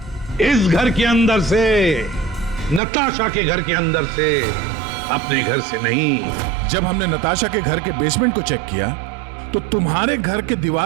इस घर के अंदर से, नताशा के घर के अंदर से, अपने घर से नहीं। जब हमने नताशा के घर के बेसमेंट को चेक किया तो तुम्हारे घर के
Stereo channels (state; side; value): drops out; left; at 2.8 s